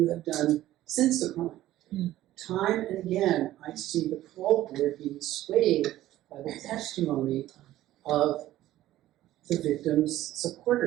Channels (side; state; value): left; quieter; 14.5 dB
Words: have done since the crime. Yeah. Time and again, I see the parole board being swayed by the testimony of the victim's